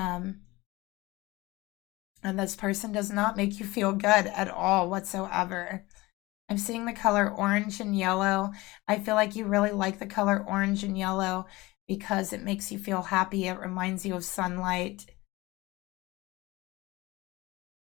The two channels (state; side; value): quieter; right; 20.9 dB